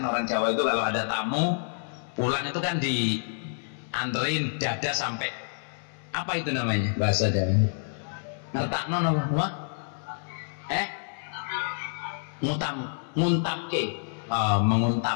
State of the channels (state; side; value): silent; right; 58 dB below the other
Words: orang Jawa itu kalau ada tamu pulang itu kan dianterin dada sampai apa itu namanya bahasa Jawa, ngertakno apa? Nguntapke.